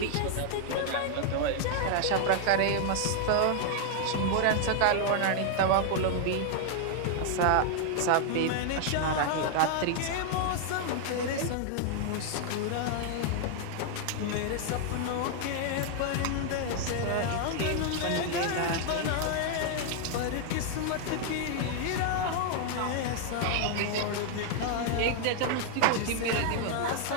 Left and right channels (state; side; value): different; both; correlation 0.00